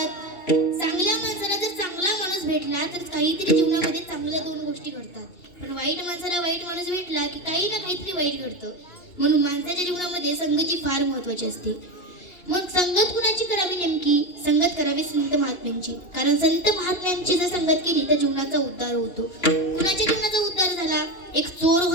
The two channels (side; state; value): right; late; 2.8 ms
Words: चांगल्या माणसाला जर चांगला माणूस भेटला तर काहीतरी जीवनामध्ये चांगल्या 2 गोष्टी घडतात. पण वाईट माणसाला वाईट माणूस भेटला की काही ना काहीतरी वाईट घडतं. म्हणून माणसाच्या जीवनामध्ये संगती फार महत्वाची असते. मग संगत कुणाची करावी? नेमकी संगत करावी संत महात्म्यांची. कारण संत महात्म्यांची जर संगत केली तर जीवनाचा उद्धार होतो. कुणाच्या जीवनाचा उद्धार झाला? एक चोर